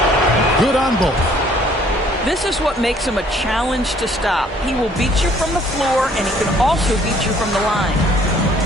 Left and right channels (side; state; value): both; normal; correlation 0.60